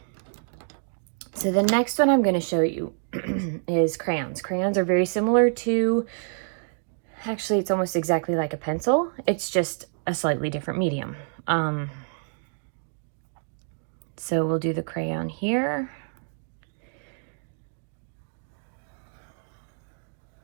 So the next one I'm going to show you is crayons. Crayons are very similar to, actually it's almost exactly like a pencil. It's just a slightly different medium. So we'll do the crayon here.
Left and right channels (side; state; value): left; silent; 60 dB below the other